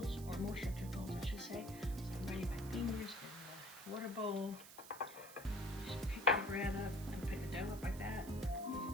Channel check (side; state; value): right; noise; hiss, 15 dB below the sound